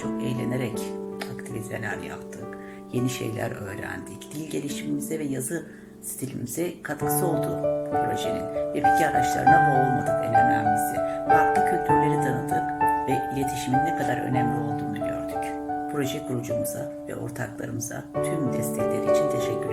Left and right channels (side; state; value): both; identical; correlation 1.00